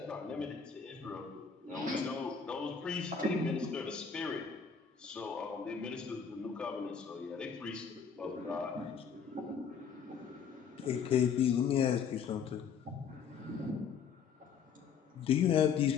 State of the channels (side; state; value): right; quieter; 6.6 dB